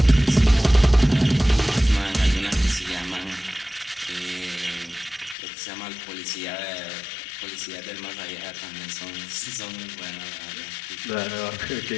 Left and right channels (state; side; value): drops out; right; at 5.4 s